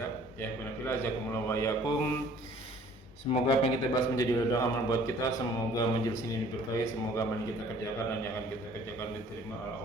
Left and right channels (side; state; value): both; normal; correlation 0.54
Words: Ya alhamdulillah jazakumullah wa yakum. Semoga apa yang kita bahas menjadi ladang amal buat kita. Semoga majelis ini diberkahi. Semoga apa yang kita kerjakan dan yang akan kita kerjakan diterima oleh